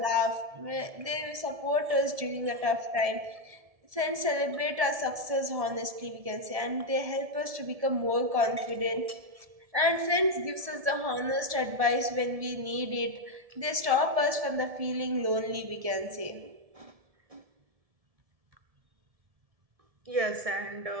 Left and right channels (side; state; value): left; late; 1.7 ms